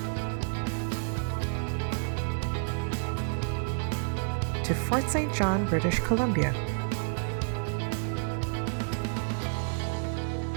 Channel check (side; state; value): left; silent; digital silence